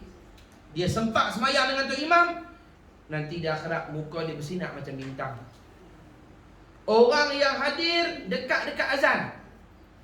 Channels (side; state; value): both; identical; correlation 1.00